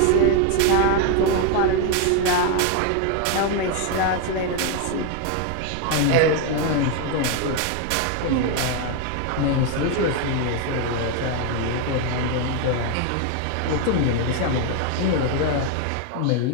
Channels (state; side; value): different; both; correlation 0.01